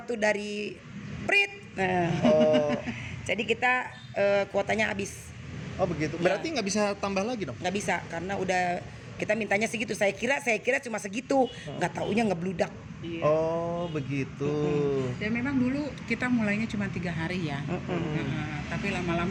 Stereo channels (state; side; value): identical; both; correlation 1.00